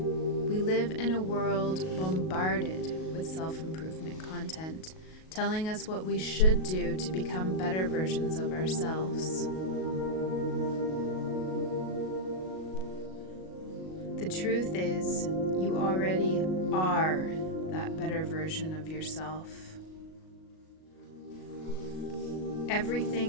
live in a world bombarded with self-improvement content, telling us what we should do to become better versions of ourselves. The truth is, you already are that better version of yourself.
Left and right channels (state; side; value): late; right; 38 ms